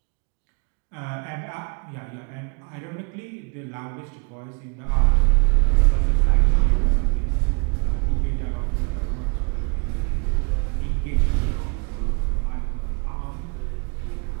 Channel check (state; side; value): quieter; left; 34.2 dB